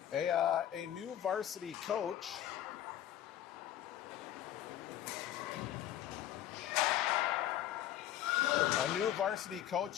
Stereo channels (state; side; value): quieter; right; 11.9 dB